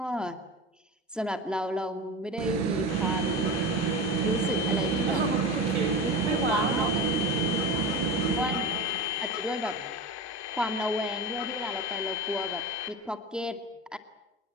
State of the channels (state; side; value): normal; both; correlation 0.27